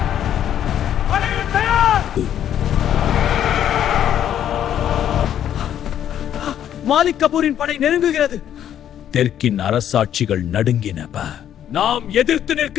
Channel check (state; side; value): quieter; right; 10.4 dB